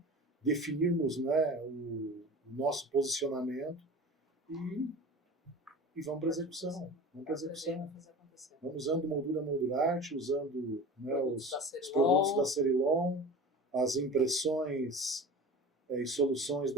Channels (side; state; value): both; normal; correlation 0.36